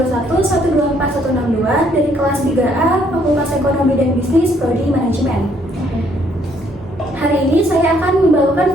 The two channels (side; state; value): both; normal; correlation 0.67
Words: dari kelas 3A Fakultas Ekonomi dan Bisnis Prodi Manajemen. Hari ini saya akan membawakan